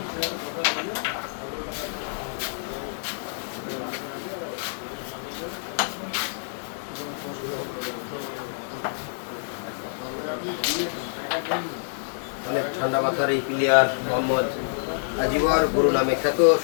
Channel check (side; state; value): right; silent; digital silence